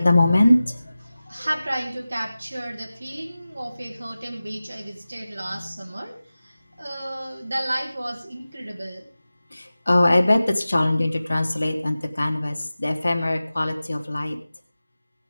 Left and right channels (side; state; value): both; inverted; correlation -0.96